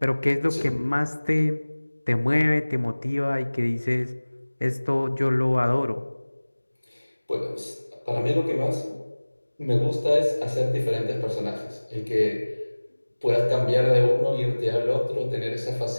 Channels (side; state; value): both; inverted; correlation -1.00